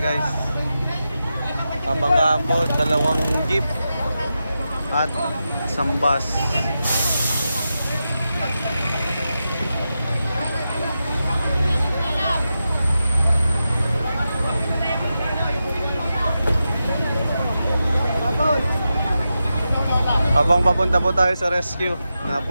Kabangga po, 2 jeep at isang bus. Habang papunta po tayo sa rescue,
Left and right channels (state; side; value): inverted; both; correlation -0.90